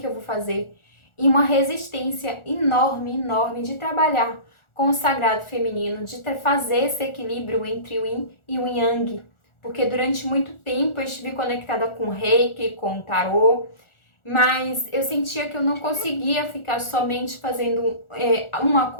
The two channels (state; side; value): late; right; 1.4 ms